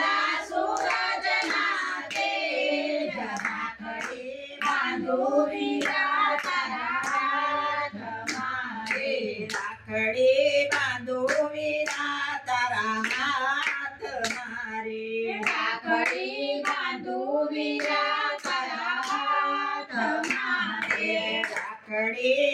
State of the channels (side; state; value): both; identical; correlation 1.00